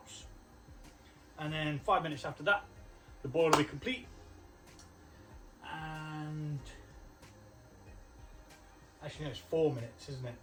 and then 5 minutes after that the boil will be complete. And actually no, it's 4 minutes, isn't it?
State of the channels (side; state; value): both; identical; correlation 1.00